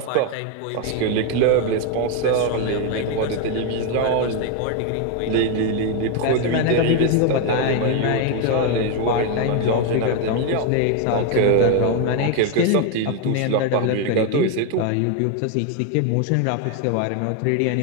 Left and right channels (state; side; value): different; both; correlation 0.01